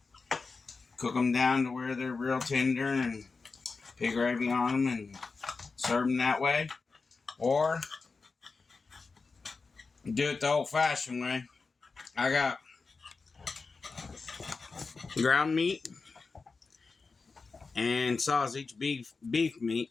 cook them down to where they're real tender, and pig gravy on them, and serve them that way. Or do it the old-fashioned way. I got ground meat and sausage, beef meat,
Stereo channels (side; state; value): right; quieter; 4.3 dB